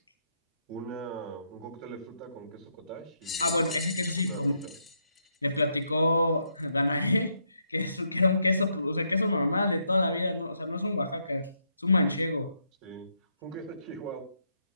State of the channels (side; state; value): both; inverted; correlation -0.78